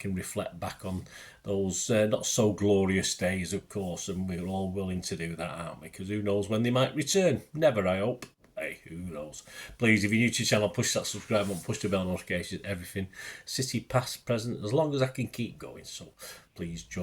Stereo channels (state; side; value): identical; both; correlation 1.00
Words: reflect back on those not so glorious days, of course, and we're all willing to do that, aren't we? Because who knows when they might return? Never, I hope. Hey, who knows? Please, if you're new to the channel, push that subscribe button, push the bell notifications, everything. City, past, present, as long as I can keep going. So please